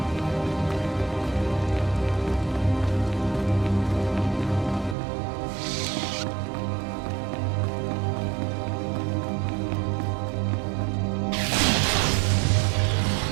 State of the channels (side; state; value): left; drops out; at 5.0 s